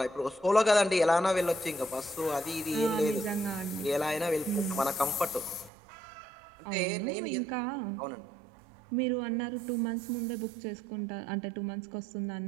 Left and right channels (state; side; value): drops out; left; at 5.7 s